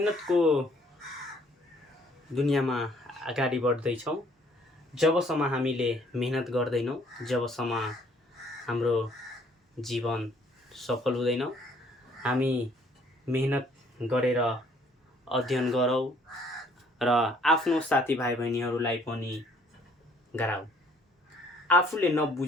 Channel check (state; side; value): normal; both; correlation 0.61